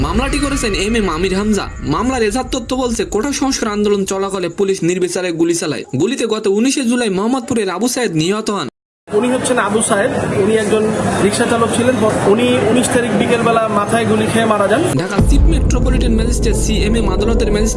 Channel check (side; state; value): both; identical; correlation 1.00